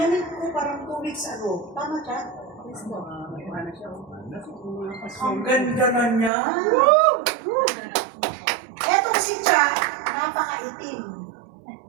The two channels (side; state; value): left; drops out; at 6.3 s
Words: ko parang 2 weeks ago. Tama, Cha? Ang ganda na niya. Etong si Cha, napakaitim.